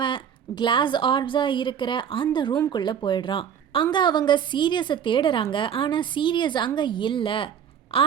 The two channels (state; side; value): quieter; left; 8.4 dB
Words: கிளாஸ் ஆர்ப்ஸாக இருக்கிற அந்த ரூம்குள்ளே போயிடுறான். அங்கே அவங்க சீரியஸை தேடுறாங்க. ஆனால் சீரியஸ் அங்கே இல்லை.